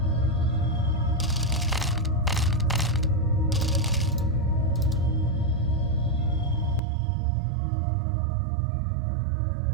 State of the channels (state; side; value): drops out; left; at 6.8 s